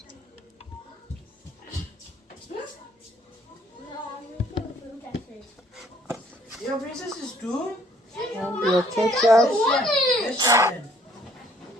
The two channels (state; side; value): normal; both; correlation 0.61